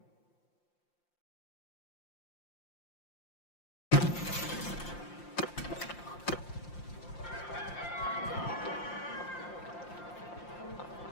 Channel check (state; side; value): late; right; 5.7 ms